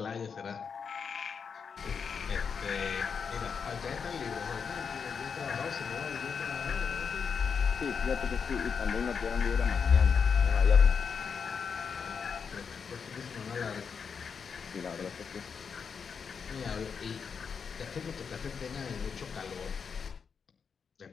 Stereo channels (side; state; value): right; quieter; 6.2 dB